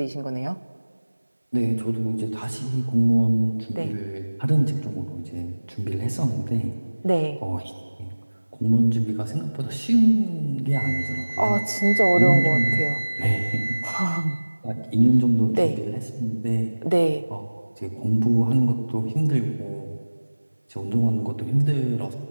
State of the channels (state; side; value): inverted; both; correlation -1.00